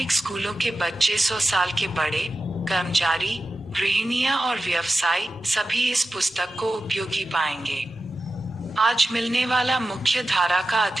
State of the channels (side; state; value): both; normal; correlation 0.93